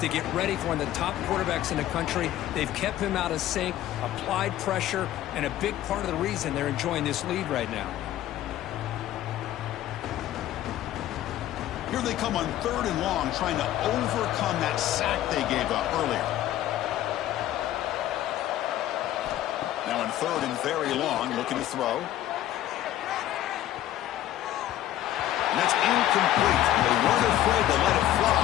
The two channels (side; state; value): right; quieter; 13.1 dB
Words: to get ready for one of the top quarterbacks in the country. They've kept him out of sync, applied pressure, and a big part of the reason they're enjoying this lead right now. Here they come on third and long, trying to overcome that sack they gave up earlier. Now on third and very long, looking to throw. And that's incomplete. They weren't afraid to let it